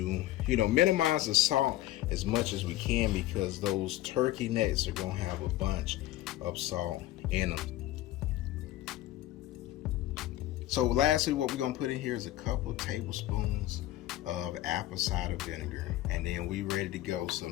you know, minimize the salt as much as we can, because those turkey necks are gonna have a bunch of salt in them. So lastly, what we're gonna put in here is a couple tablespoons of apple cider vinegar, and then we ready to go.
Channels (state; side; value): quieter; right; 15.1 dB